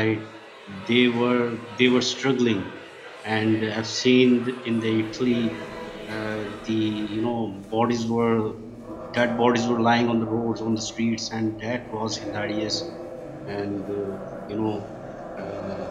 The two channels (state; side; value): identical; both; correlation 1.00